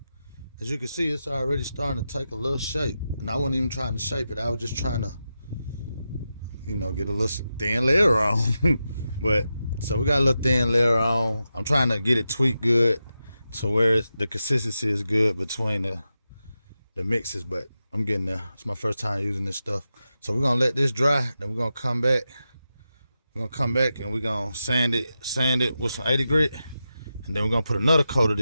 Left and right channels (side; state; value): both; inverted; correlation -0.90